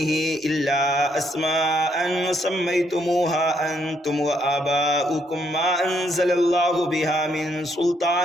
إلا أسماء سميتموها أنتم وآباؤكم ما أنزل الله بها من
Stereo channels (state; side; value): normal; both; correlation 0.72